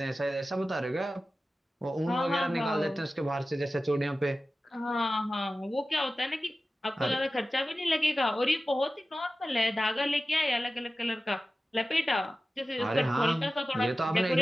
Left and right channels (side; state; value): both; normal; correlation 0.95